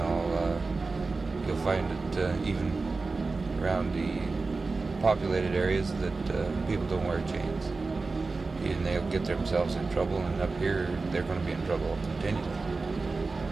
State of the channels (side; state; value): left; quieter; 3.9 dB